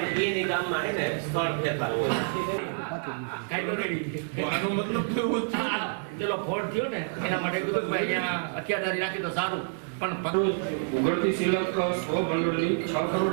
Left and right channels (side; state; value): left; silent; digital silence